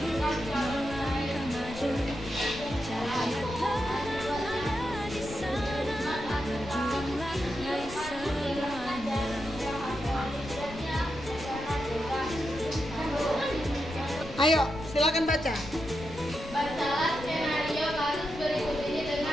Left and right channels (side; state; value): left; noise; rumble, 13 dB below the sound